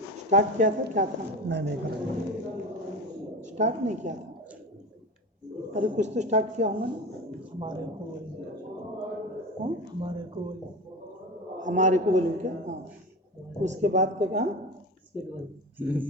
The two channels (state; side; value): normal; both; correlation 0.27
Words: स्टार्ट किया था, क्या था? नहीं स्टार्ट नहीं किया था। अरे कुछ तो स्टार्ट किया होगा ना। हमारे को हमारे को बोलूँ क्या? हाँ, उसके बाद क्या कहा?